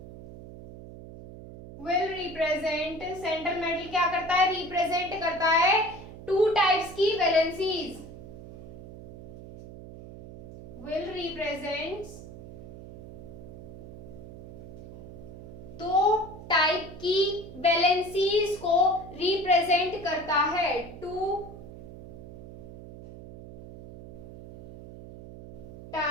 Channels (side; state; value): right; noise; hum, 14 dB below the sound